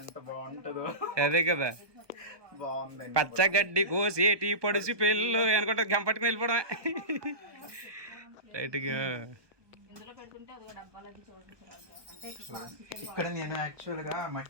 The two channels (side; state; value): left; late; 1.2 ms